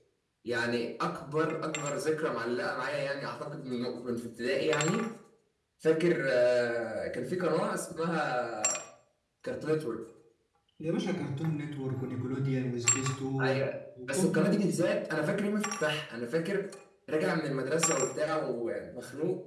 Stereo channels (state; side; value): identical; both; correlation 1.00